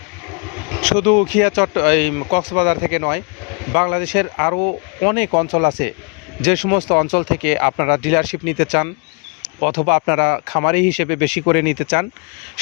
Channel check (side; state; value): right; quieter; 35.1 dB